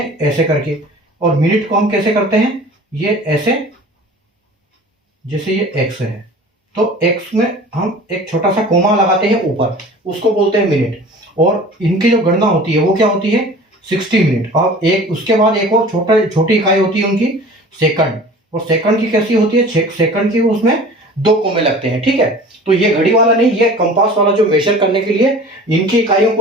ऐसे करके, और मिनट को हम कैसे करते हैं, ये ऐसे, जैसे ये एक्स है, तो एक्स में हम एक छोटा सा कोमा लगाते हैं ऊपर, उसको बोलते हैं मिनट। और इनकी जो गणना होती है वो क्या होती है, 60 मिनट। और एक उसके बाद एक और छोटी इकाई होती है उनकी, सेकंड। और सेकंड की कैसी होती है, सेकंड की उसमें 2 कोमे लगते हैं, ठीक है। तो ये घड़ी वाला नहीं, ये कंपास वाला जो मेजर करने के लिए, इनकी इकाइयों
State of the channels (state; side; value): normal; both; correlation 0.43